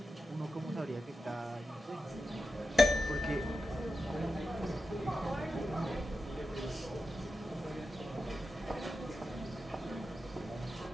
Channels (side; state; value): both; normal; correlation 0.90